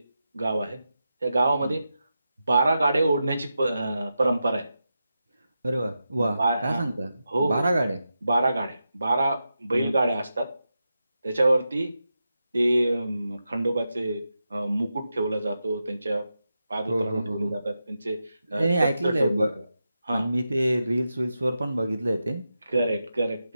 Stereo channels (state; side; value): inverted; both; correlation -0.89